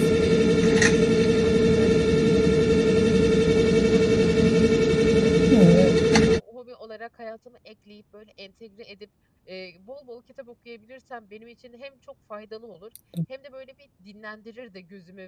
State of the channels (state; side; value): identical; both; correlation 1.00